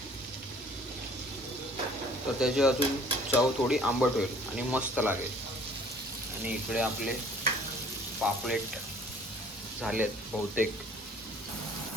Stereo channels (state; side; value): normal; both; correlation 0.54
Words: तर त्याची अजून चव थोडी आंबट होईल आणि मस्त लागेल. आणि इकडे आपले पापलेट झालेत बहुतेक.